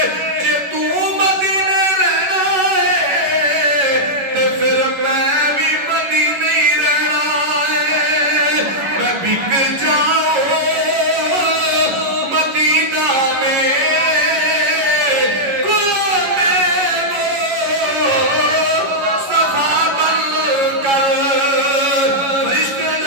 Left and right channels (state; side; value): late; left; 11 ms